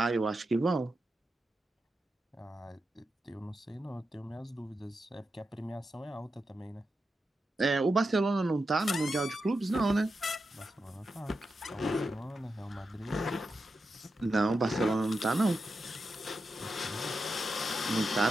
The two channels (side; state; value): both; normal; correlation 0.88